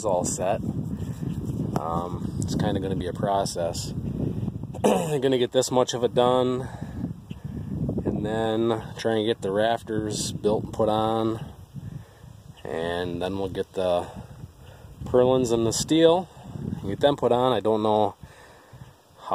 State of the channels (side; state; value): both; identical; correlation 1.00